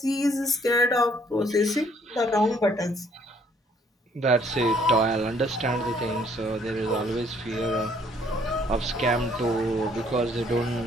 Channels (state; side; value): normal; both; correlation 0.63